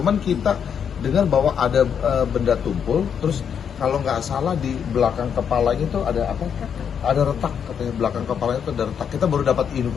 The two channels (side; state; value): right; quieter; 7.6 dB